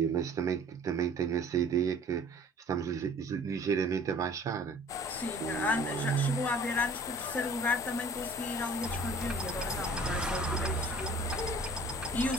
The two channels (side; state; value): both; normal; correlation 0.49